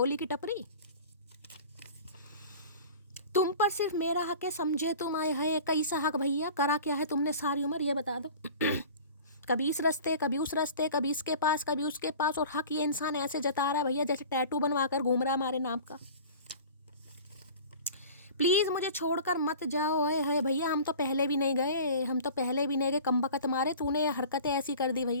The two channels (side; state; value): both; inverted; correlation -0.41